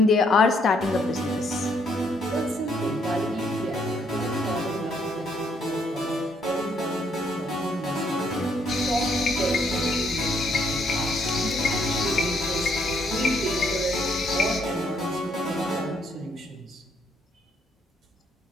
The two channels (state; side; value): normal; both; correlation 0.70